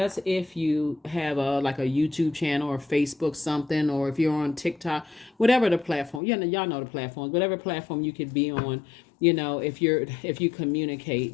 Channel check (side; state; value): right; drops out; at 6.2 s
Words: have a like a YouTube channel or Facebook something, or if you're on TikTok, whatever the platform. Y'all know the platforms, whatever platform you could be on. If you